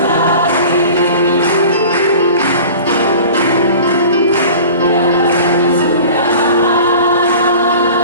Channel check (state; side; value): inverted; both; correlation -0.40